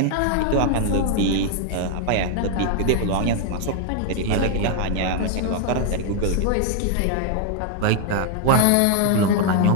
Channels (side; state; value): both; different; correlation 0.00